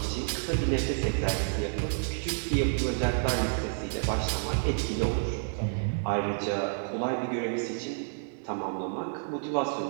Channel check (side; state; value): left; silent; digital silence